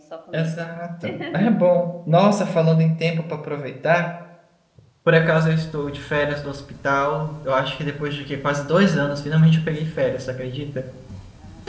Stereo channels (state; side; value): identical; both; correlation 1.00